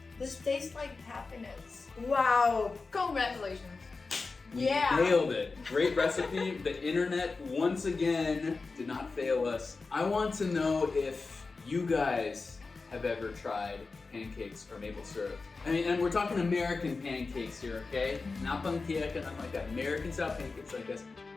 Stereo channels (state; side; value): quieter; right; 4.1 dB